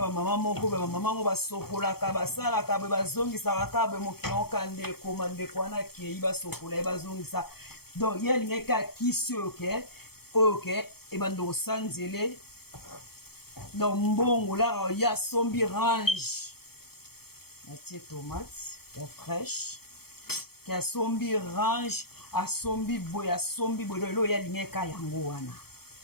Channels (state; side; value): late; right; 0.95 ms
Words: bamama moko be bamama ngo basokolaka basalaka be bazongisaka ka be mokili oka ndeko mandeko wana akei basokola ye bazongisa donc ye alingaki akisi oyo ke ebanda osanzele na mbongo lara ye asombi range atie tomate ya fraîche ke asombi range asombi boye lelo ye alingaki ka yango wana